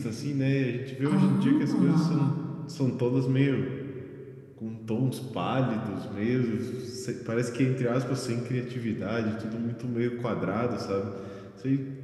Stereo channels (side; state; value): both; identical; correlation 1.00